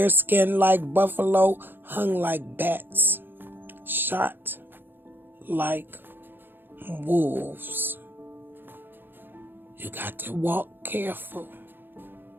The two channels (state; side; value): late; left; 0.098 ms